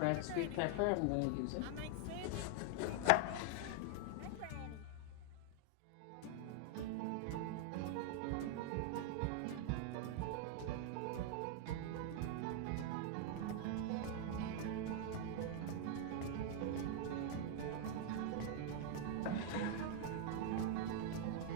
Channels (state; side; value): different; both; correlation 0.00